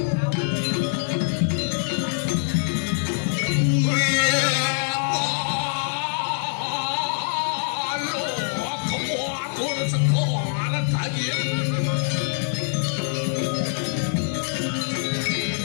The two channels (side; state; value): right; silent; digital silence